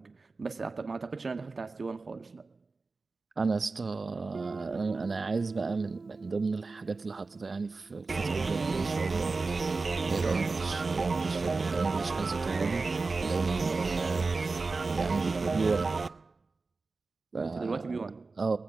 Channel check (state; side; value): quieter; left; 3.9 dB